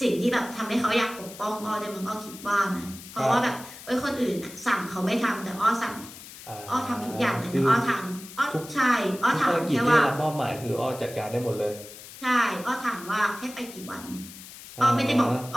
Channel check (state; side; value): noise; left; hiss, 16 dB below the sound